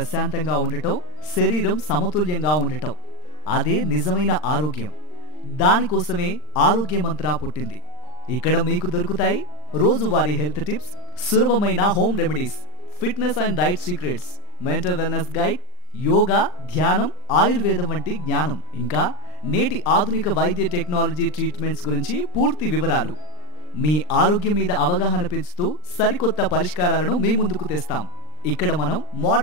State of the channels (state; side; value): late; right; 39 ms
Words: ఉండటం, శరీరం సమతుల్యంగా ఉండటం. అదే నిజమైన ఆరోగ్యం. దానికోసమే ఆరోగ్య మంత్ర పుట్టింది. ఇక్కడ మీకు దొరుకుతాయి రోజువారీ హెల్త్ టిప్స్, సులభమైన home remedies, fitness and diet secrets, mental wellness guide, yoga, ధ్యానం, ఆయుర్వేదం వంటి జ్ఞానం, ఇంకా నేటి ఆధునిక వైద్య టెక్నాలజీ ట్రీట్మెంట్స్ గురించి పూర్తి వివరాలు. మీ ఆరోగ్యం మీద అవగాహన పెంచుతూ సరికొత్త పరిష్కారాలను మీ ముందుకు తెస్తాం. ఇక్కడ మనం